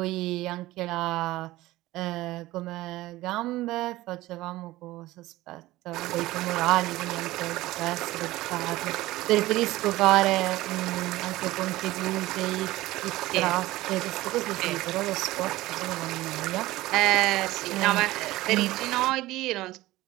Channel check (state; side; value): quieter; left; 17.6 dB